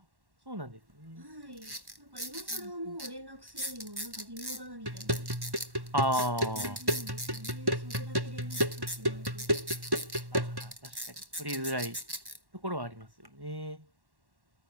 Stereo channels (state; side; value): late; left; 1.1 ms